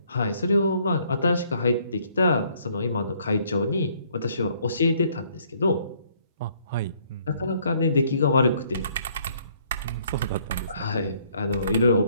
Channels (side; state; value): both; inverted; correlation -0.65